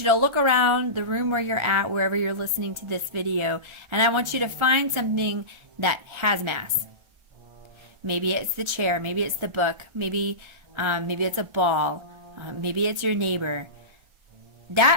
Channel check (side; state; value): left; late; 1.4 ms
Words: you to look around the room where you're at, wherever you're listening to this video, and I want you to find something that has mass. Maybe it's the chair, maybe it's the book, maybe it's a ball, maybe it's your neighbor.